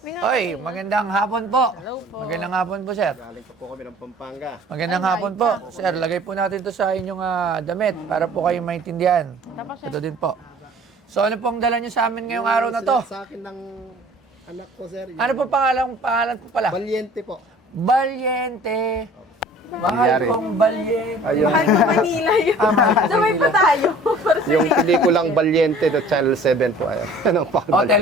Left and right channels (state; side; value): normal; both; correlation 0.49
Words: Oy, magandang hapon po. Magandang hapon po, sir. Galing po kami ng Pampanga. Magandang hapon po. Sir, lagay po natin to sa inyong damit para po kayo maintindihan. Ito din po. So, ano pong dala nyo sa amin ngayong araw na to? Sa akin ng anak ko, sir. Ano po pangalan po pala? Valiente po. Valiente. Mahal kong Valiente. Ayun. Mahal ko Manila yun. Mahal ko Sabay pa tayo. Yung pelikulang Valiente, the Channel 7 po. Ayun. Ano pa? Oh,